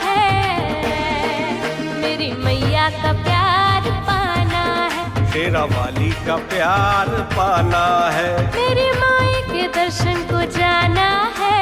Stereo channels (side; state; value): both; identical; correlation 1.00